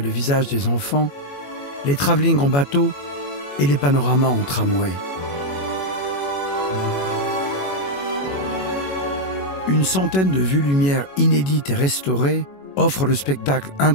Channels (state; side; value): late; right; 21 ms